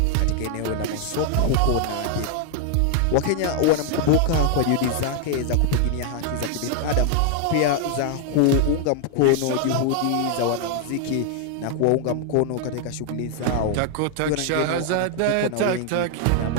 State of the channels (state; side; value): different; both; correlation 0.00